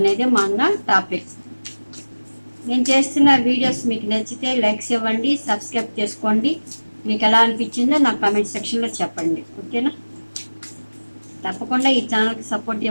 మన టాపిక్. నేను చేస్తున్న వీడియోస్ మీకు నచ్చితే లైక్స్ ఇవ్వండి, సబ్స్క్రైబ్ చేసుకోండి. మీకు ఎలా అనిపించిందో నాకు కామెంట్ సెక్షన్లో చెప్పండి. ఓకేనా? తప్పకుండా ఈ ఛానల్కి సపోర్ట్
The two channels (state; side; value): inverted; both; correlation -1.00